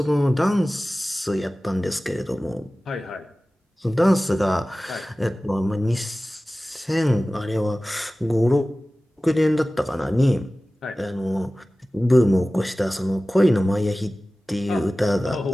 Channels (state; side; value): normal; both; correlation 0.97